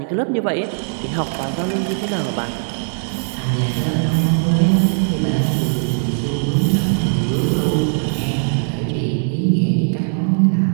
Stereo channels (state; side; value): silent; left; digital silence